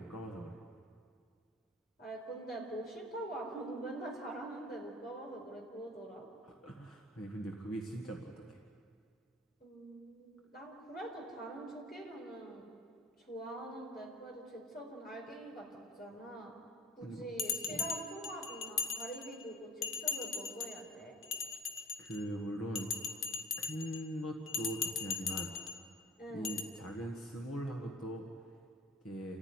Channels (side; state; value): both; normal; correlation 0.45